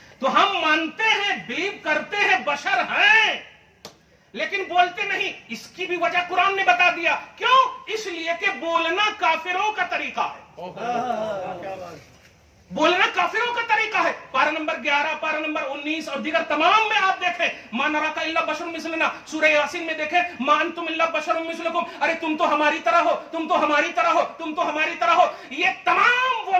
تو ہم مانتے ہیں، بلیو کرتے ہیں بشر ہیں، لیکن بولتے نہیں۔ اس کی بھی وجہ قرآن نے بتا دیا، کیوں؟ اس لیے کہ بولنا کافروں کا طریقہ ہے، بولنا کافروں کا طریقہ ہے۔ پارہ نمبر 11، پارہ نمبر 19 اور دیگر تمام میں آپ دیکھیں، ما نراک الا بشر مثلنا، سورہ یاسین میں دیکھیں، ما انتم الا بشر مثلکم، ارے تم تو ہماری طرح ہو، تم تو ہماری طرح ہو، تم تو ہماری طرح ہو۔ یہ تمام وہ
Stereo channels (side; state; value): both; identical; correlation 1.00